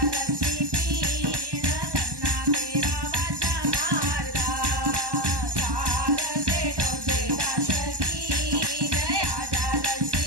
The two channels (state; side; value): late; left; 1.1 ms